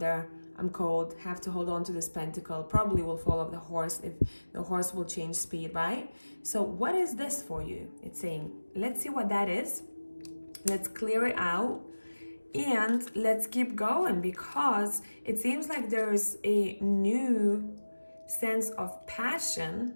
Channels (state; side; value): inverted; both; correlation -1.00